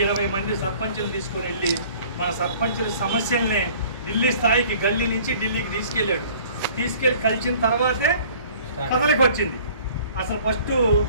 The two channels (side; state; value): both; inverted; correlation -0.51